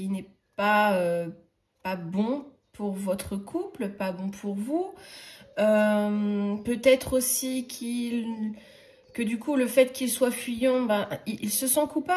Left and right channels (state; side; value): identical; both; correlation 1.00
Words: n'est pas bon pour votre couple, pas bon pour vous. Peut-être aussi que du coup, le fait qu'il soit fuyant, il se sent